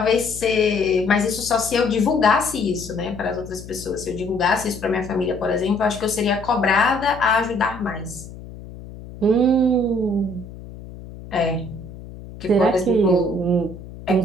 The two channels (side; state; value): left; noise; hum, 15 dB below the sound